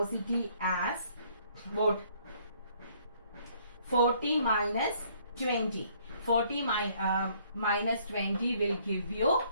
as what? 40 minus 20. 40 minus 20 will give you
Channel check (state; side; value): inverted; both; correlation -0.63